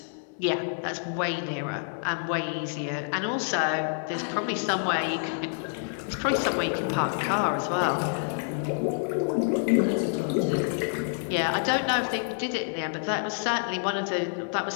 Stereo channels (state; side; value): silent; right; 59 dB below the other